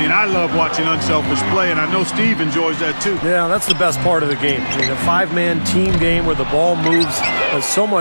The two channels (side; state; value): both; inverted; correlation -1.00